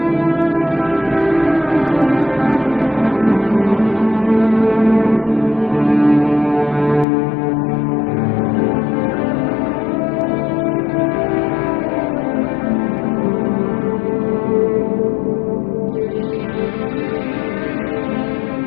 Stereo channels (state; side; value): drops out; right; at 7.1 s